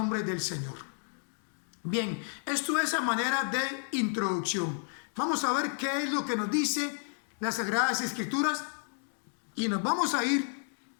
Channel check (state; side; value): silent; right; 57 dB below the other